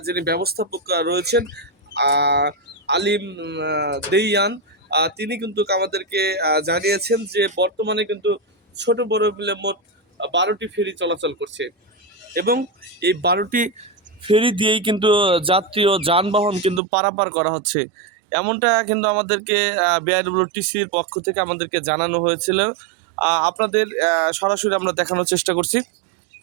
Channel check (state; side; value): drops out; left; at 16.8 s